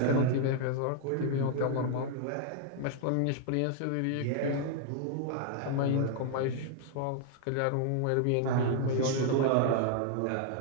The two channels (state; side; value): different; both; correlation 0.00